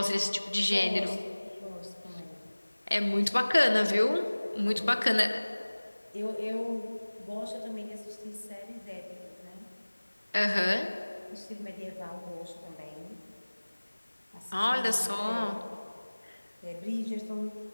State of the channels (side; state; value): both; inverted; correlation -1.00